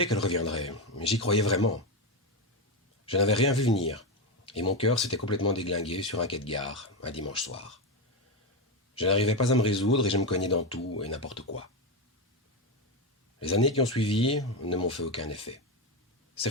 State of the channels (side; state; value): both; normal; correlation 0.12